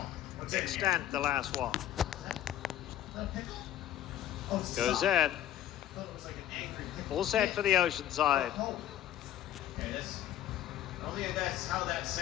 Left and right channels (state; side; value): quieter; right; 12.1 dB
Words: Extent the last one. Goes in. All set for the Oceanside. That's how that